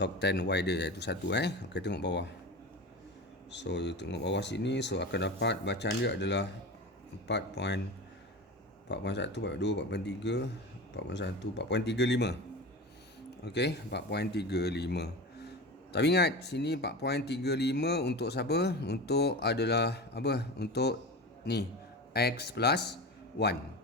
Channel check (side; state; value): both; normal; correlation 0.28